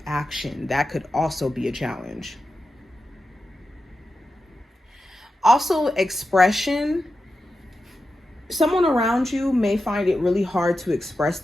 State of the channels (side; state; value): both; normal; correlation 0.91